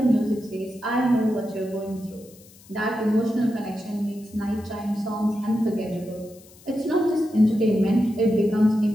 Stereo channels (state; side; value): noise; left; hiss, 24 dB below the sound